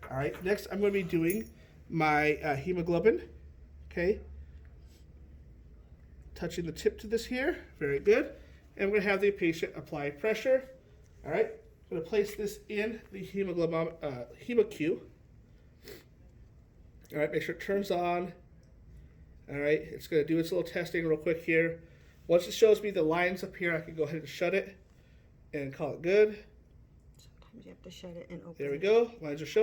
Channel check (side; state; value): both; identical; correlation 1.00